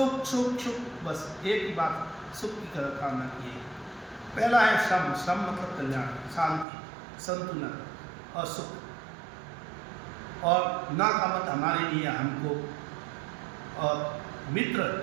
सुख सुख, बस एक ही बात, सुख की कामना की है। पहला है श्रम, श्रम मतलब कल्याण, शांति, संतुलन और सुख। और ना का मत हमारे लिए, हमको। और मित्र,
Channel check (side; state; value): left; drops out; at 6.7 s